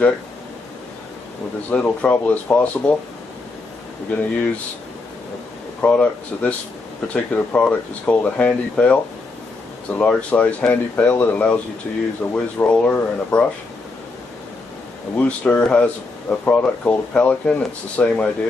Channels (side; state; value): right; quieter; 3.5 dB